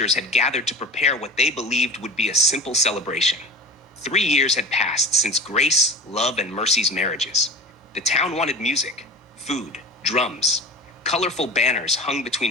had gathered to prepare what they believed would be a simple celebration. 3 years had passed since Grace, Love, and Mercy's marriages. The town wanted music, food, drums. Colorful banners hung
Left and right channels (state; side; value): normal; both; correlation 0.35